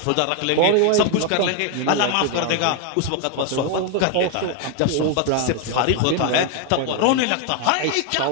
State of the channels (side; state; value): both; different; correlation 0.01